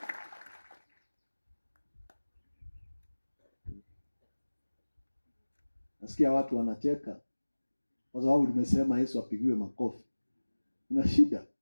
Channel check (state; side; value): inverted; both; correlation -1.00